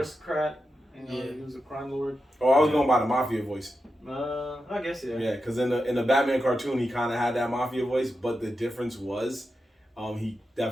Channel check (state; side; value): normal; both; correlation 0.89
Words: He was a crime lord. Oh, I was going by the mafia voice. I guess yeah. Yeah, because in the Batman cartoon he kind of had that mafia voice, but the difference was. He